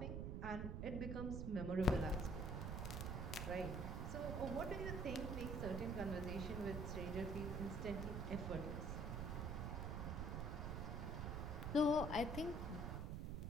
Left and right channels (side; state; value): right; noise; rumble, 2 dB below the sound